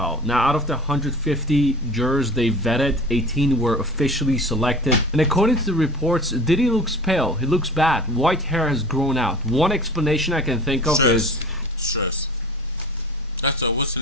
Now, out of the 150 jurors they vetted, 18 were officially selected. And according to the reports, Diddy looks pale. He looks bad. White hair has grown out. One explanation I can think of is stress. That's what's her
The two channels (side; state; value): both; normal; correlation 0.39